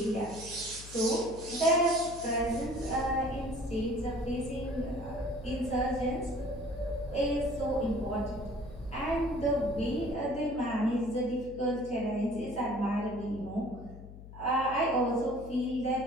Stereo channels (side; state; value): left; noise; hum, 15 dB below the sound